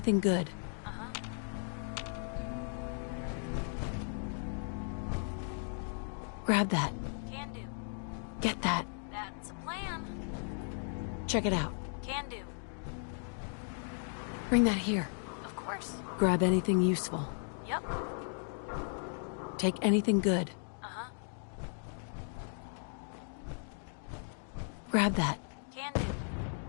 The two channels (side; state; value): right; silent; 54 dB below the other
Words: good. Grab that. Can do. Get that. That's a plan. Check it out. Can do. Bring that here. Of course. Grab anything useful. Yep. Take anything good. Grab that. Can do.